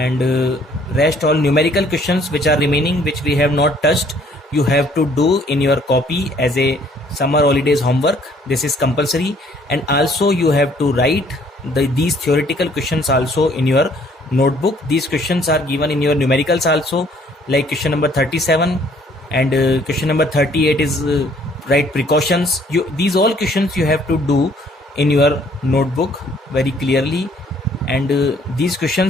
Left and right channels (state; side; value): normal; both; correlation 0.61